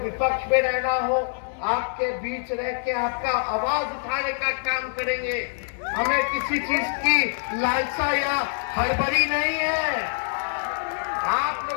में रहना हो आपके बीच रह के आपका आवाज उठाने का काम करेंगे। हमें किसी चीज की लालसा या हड़बड़ी नहीं है। आप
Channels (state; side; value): silent; right; digital silence